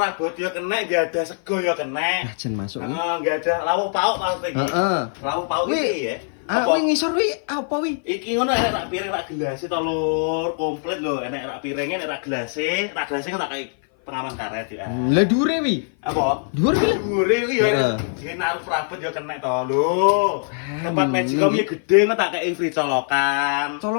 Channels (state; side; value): silent; right; 56 dB below the other